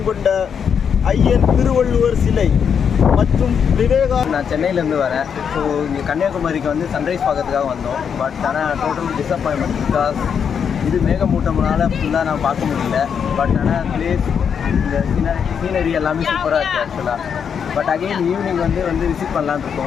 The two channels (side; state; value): right; quieter; 7.2 dB